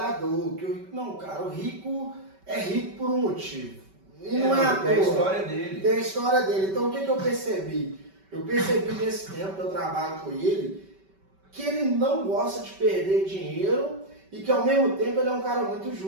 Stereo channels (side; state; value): left; late; 5.2 ms